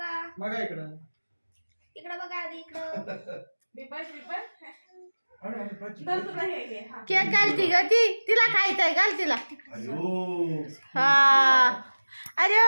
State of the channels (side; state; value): both; inverted; correlation -1.00